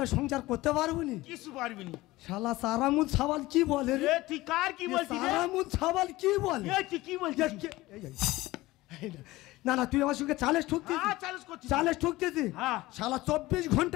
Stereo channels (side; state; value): right; quieter; 18.7 dB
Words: সংসার করতে পারবো নি? কিছু পারবি নি। শালা সারামুদ সাবাল কি বলে রে? তুই কার কি বলছিস? সারামুদ সাবাল কি বলে? তুই কি বলছিস? না না তুই আমার সঙ্গে চালেস ঠুকতিস চ্যালেঞ্জ করছি চালেস ঠুকতেছি হ্যাঁ। শালা 24